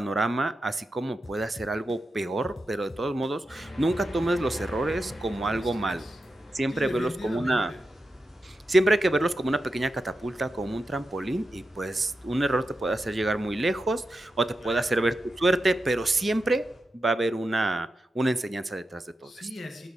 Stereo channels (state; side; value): normal; both; correlation 0.89